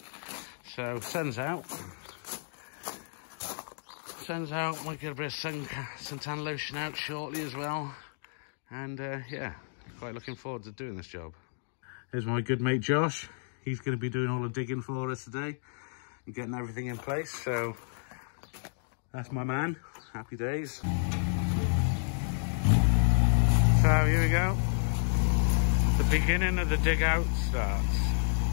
So sun's out. Sun's out, might get a bit of suntan lotion out shortly as well. And yeah, quite looking forward to doing this job. Here's my good mate Josh. He's going to be doing all the digging for us today and getting everything in place. So that's my man. Happy days. So here we go. The beginning of the dig out starts.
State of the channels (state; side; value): silent; right; digital silence